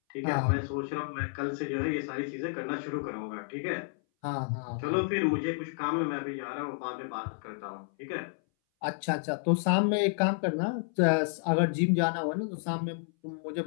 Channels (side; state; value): right; silent; 57 dB below the other